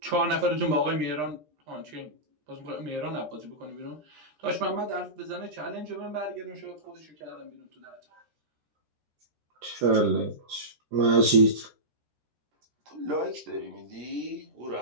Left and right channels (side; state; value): left; late; 13 ms